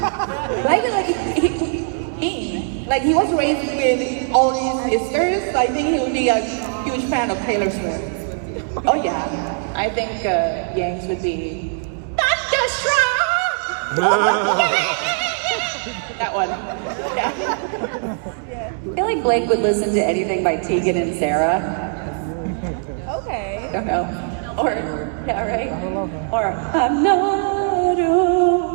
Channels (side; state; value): left; silent; 65 dB below the other